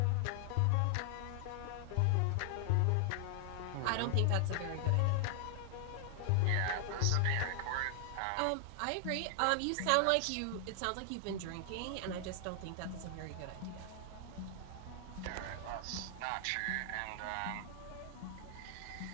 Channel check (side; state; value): both; different; correlation 0.00